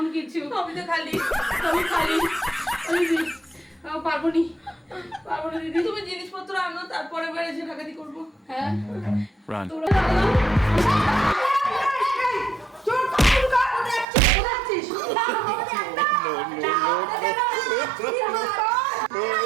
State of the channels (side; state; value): left; drops out; at 14.1 s